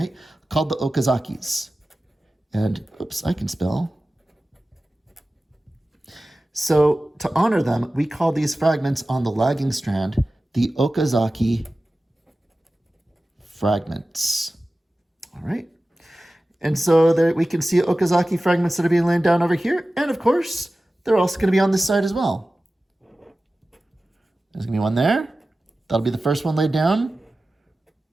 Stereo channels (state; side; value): normal; both; correlation 0.96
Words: called the Okazakis. And, oops, I can spell. So to honor them, we call these fragments on the lagging strand the Okazaki fragments. All right. And so there we can see Okazaki fragments that are being laid down over here. And of course, they're also going to be on this side as well. There's going to be one there. That'll be the first one laid down.